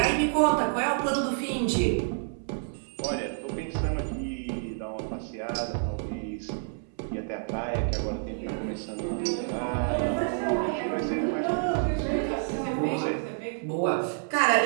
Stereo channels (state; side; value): silent; left; 59 dB below the other